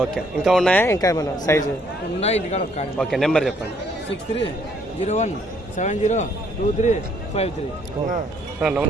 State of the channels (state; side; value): normal; both; correlation 0.66